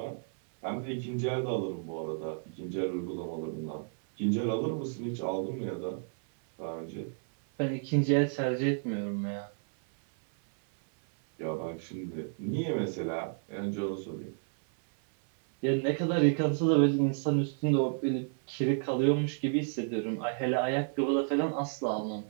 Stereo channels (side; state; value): left; silent; 57 dB below the other